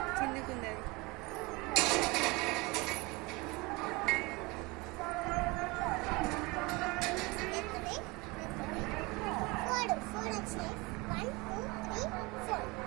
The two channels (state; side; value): quieter; left; 24.4 dB